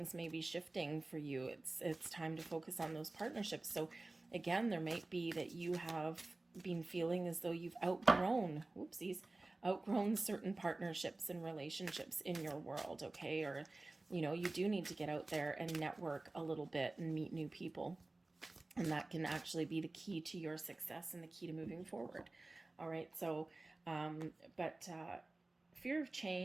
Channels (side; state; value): left; quieter; 3.0 dB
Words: may be shifting for you. It's time to focus on those partnerships. So again, there might be that you have been feeling as though you've outgrown certain partnerships and relationships in your world, okay? Or, you do need to get out there and network a little bit and meet new people. And that can actually be the key to your success and the key to moving forward. All right. So, but fear of